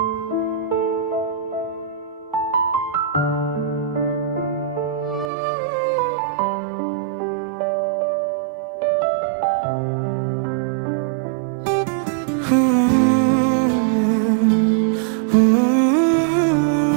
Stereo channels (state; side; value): drops out; left; at 5.3 s